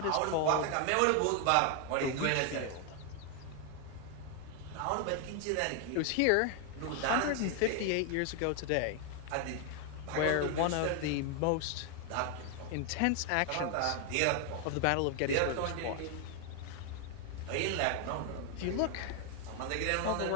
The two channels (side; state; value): both; different; correlation 0.01